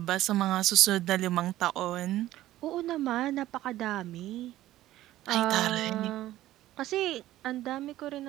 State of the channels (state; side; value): quieter; left; 14.8 dB